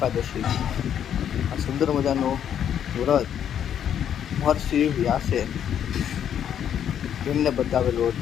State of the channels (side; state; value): right; quieter; 9.3 dB